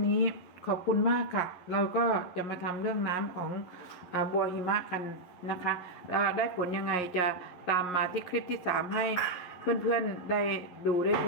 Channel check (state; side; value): late; right; 11 ms